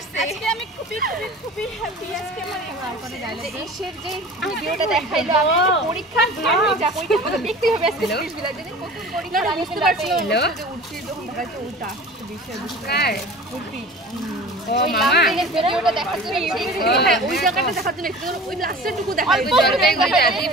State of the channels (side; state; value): both; normal; correlation 0.39